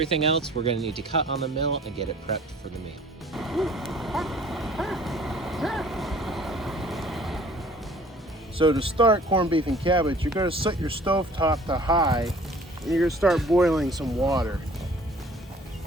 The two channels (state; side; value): normal; both; correlation 0.52